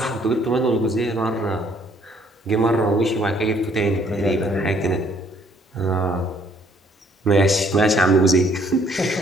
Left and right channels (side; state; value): both; normal; correlation 0.63